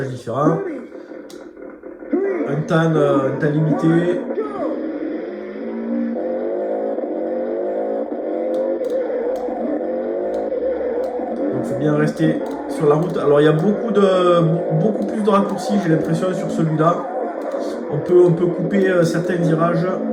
différents. Un temps limité. Donc il faut bien rester sur la route. Alors il y a beaucoup plus de raccourcis, j'ai l'impression, sur celui-là. On peut couper certains virages.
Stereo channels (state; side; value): identical; both; correlation 1.00